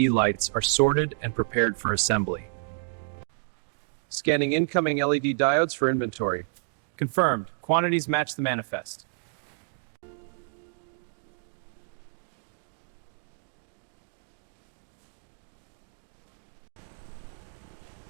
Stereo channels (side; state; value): left; silent; digital silence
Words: lights are sorted and prepared for assembly. Scanning incoming LED diodes for inventory. Confirmed. Quantities match the manifest.